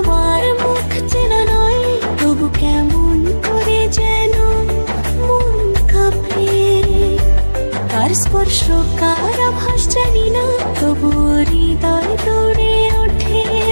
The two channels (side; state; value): both; inverted; correlation -1.00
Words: মুখ চেনা নয়, তবু কেমন করে যেন মন কাঁপে। তার স্পর্শ কার আভাস জানি না, তবু হৃদয় দৌড়ে ওঠে